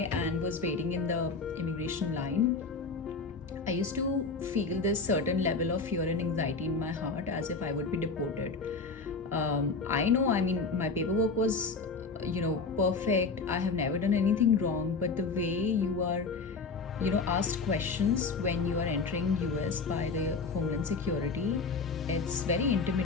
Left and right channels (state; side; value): quieter; right; 4.3 dB